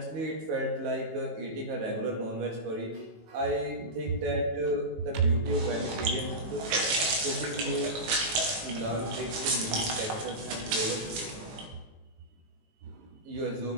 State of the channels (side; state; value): left; late; 18 ms